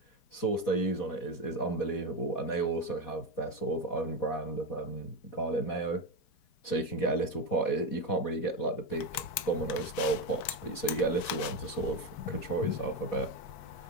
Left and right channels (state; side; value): late; right; 5.2 ms